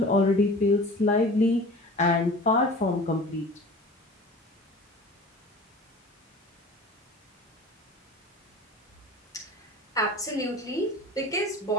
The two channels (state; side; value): normal; both; correlation 0.40